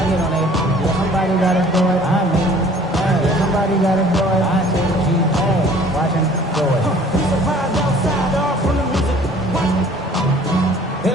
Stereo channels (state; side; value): normal; both; correlation 0.52